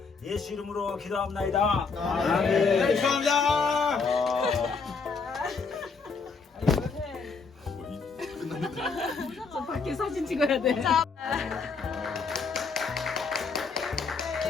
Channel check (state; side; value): quieter; right; 4.8 dB